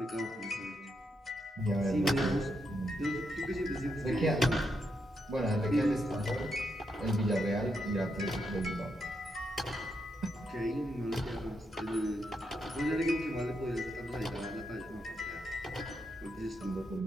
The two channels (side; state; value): both; normal; correlation 0.81